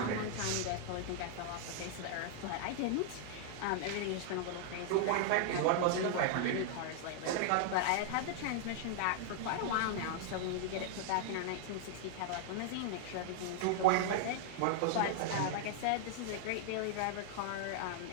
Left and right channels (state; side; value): different; both; correlation 0.00